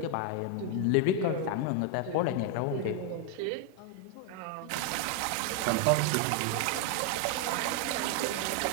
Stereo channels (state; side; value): different; both; correlation 0.00